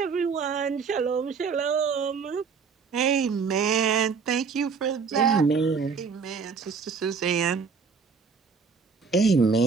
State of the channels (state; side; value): quieter; left; 5.5 dB